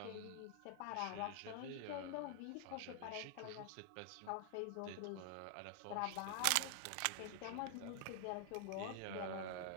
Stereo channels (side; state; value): both; different; correlation 0.00